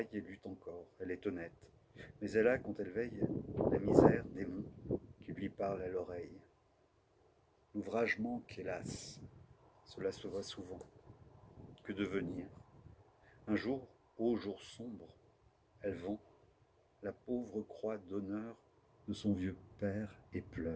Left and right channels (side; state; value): both; identical; correlation 1.00